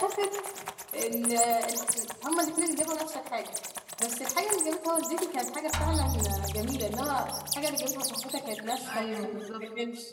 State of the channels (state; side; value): identical; both; correlation 1.00